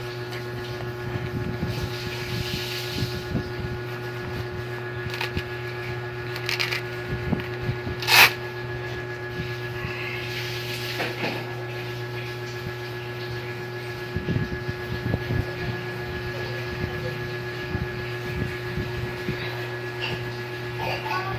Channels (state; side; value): identical; both; correlation 1.00